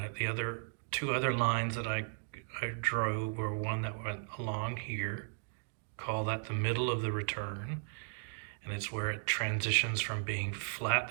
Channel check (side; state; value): left; silent; digital silence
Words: 2 other lines that I drew were one that went along here. Call that the middle of the return. And it's where it transitions from being flat.